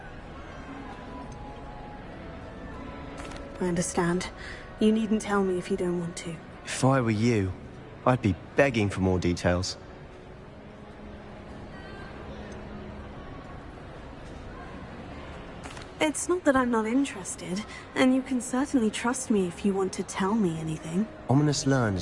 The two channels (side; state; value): both; identical; correlation 1.00